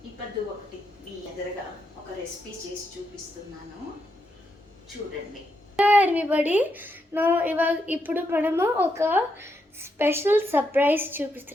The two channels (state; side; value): normal; both; correlation 0.81